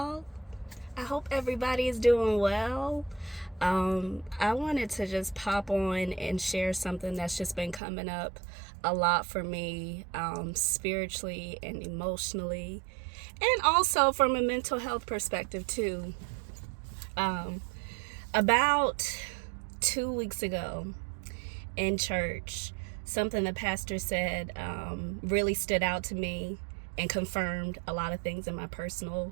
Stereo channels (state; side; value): drops out; left; at 7.8 s